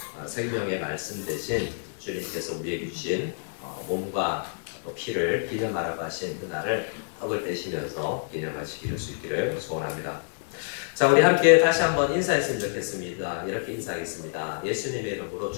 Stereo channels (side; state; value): right; silent; digital silence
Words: 생명의 말씀 대신 주님께서 우리에게 주신 몸과 또 피를 기념하라고 하신 그날을 떡을 떼시면서 기념하시기를 수 있기를 소원합니다. 자, 우리 함께 다시 한번 인사했으면 좋겠습니다. 이렇게 인사하겠습니다. 예수님의 이름으로